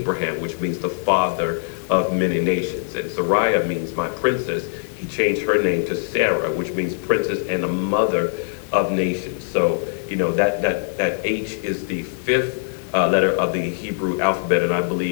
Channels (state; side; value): silent; right; digital silence